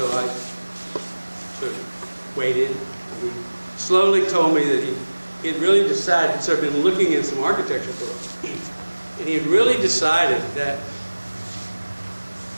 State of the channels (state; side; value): inverted; both; correlation -1.00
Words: I sort of waited. He slowly told me that he had really decided, he'd sort of been looking at some architecture books, and he had really decided that